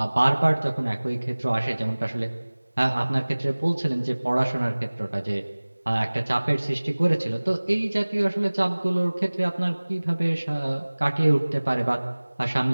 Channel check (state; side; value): inverted; both; correlation -1.00